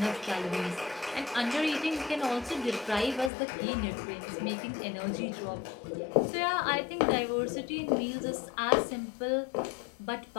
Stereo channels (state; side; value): drops out; right; at 3.3 s